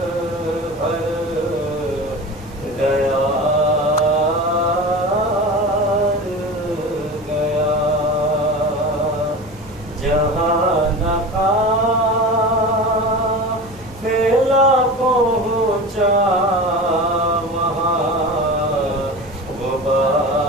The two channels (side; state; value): both; normal; correlation 0.31